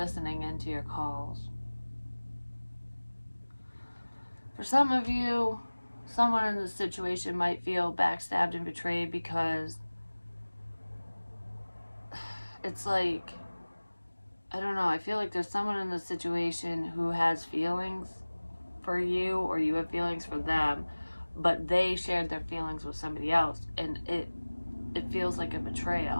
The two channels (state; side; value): inverted; both; correlation -1.00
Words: into your calls. For some of you, someone in this situation might feel backstabbed and betrayed because it's like, I don't know, I feel like there's someone in this situation who has feelings for you, or you have feelings for them, but they shared their feelings with somebody else, and it feels like a